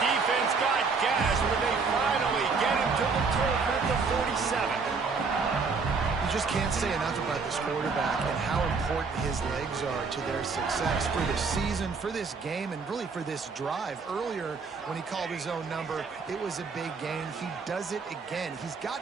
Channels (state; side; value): quieter; left; 4.8 dB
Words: got gashed, but they finally get him to the turf at the 47. You just can't say enough about this quarterback and how important his legs are to their success for this season, for this game, and really for this drive. Earlier, when he called his own number, it was a big gain. He does it again. He's